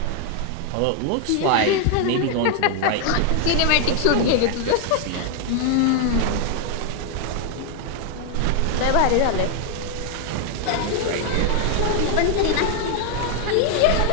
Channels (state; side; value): different; both; correlation 0.00